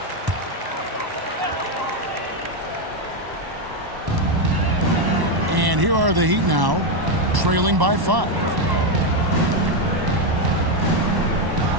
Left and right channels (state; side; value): late; left; 1.1 ms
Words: And here are the Heat now, trailing by 5.